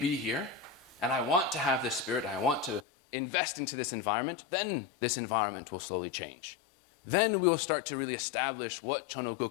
here, and I want to have this spirit, I want to invest into this environment, then this environment will slowly change. Then we'll start to really establish what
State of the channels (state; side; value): drops out; right; at 2.8 s